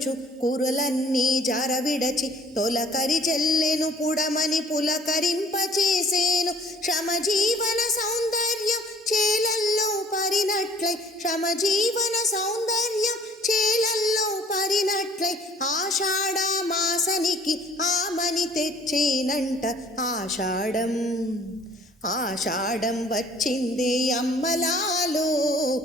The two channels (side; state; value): both; normal; correlation 0.53